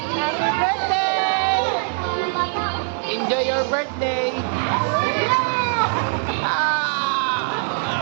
Happy birthday! Enjoy your birthday!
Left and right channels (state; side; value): silent; left; 60 dB below the other